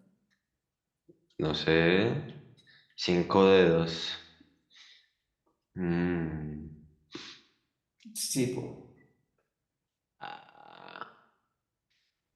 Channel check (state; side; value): identical; both; correlation 1.00